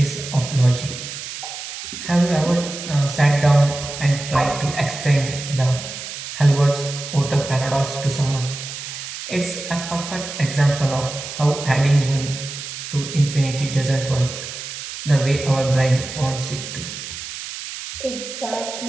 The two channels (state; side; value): noise; right; hiss, 9 dB below the sound